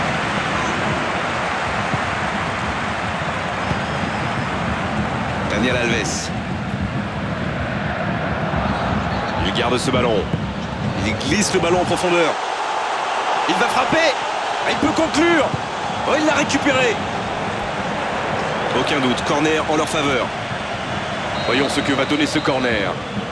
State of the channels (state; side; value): identical; both; correlation 1.00